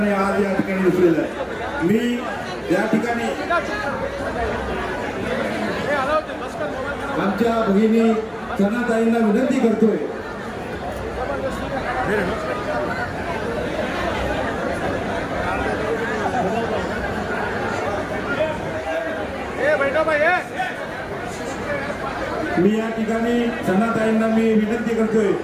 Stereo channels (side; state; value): both; identical; correlation 1.00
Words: आज या ठिकाणी दिसलेलं आहे. मी या ठिकाणी आमच्या भगिनी सनाताईंना विनंती करतोय मी या ठिकाणी सनाताईंना मी विनंती करतोय